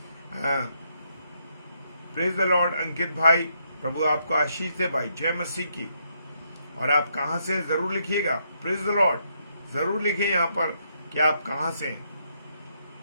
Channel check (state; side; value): inverted; both; correlation -0.76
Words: प्रेज द लॉर्ड अंकित भाई, प्रभु आपको आशीष दे भाई, जय मसीह की। और आप कहां से हैं जरूर लिखिएगा, प्रेज द लॉर्ड जरूर लिखिए यहां पर कि आप कहां से हैं।